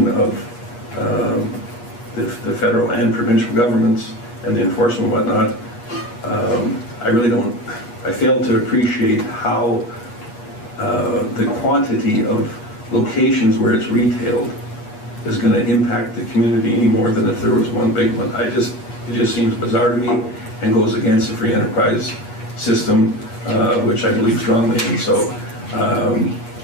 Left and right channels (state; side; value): late; right; 8.4 ms